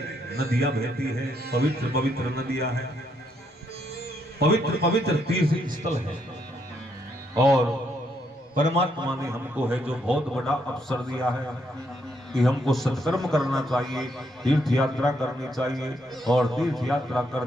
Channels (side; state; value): both; normal; correlation 0.75